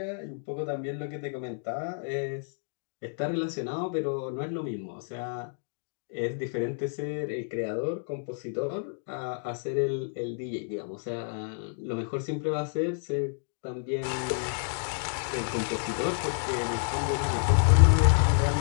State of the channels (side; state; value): right; silent; digital silence